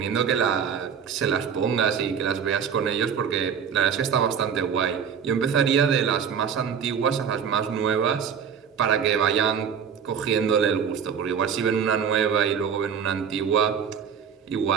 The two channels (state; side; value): quieter; left; 7.3 dB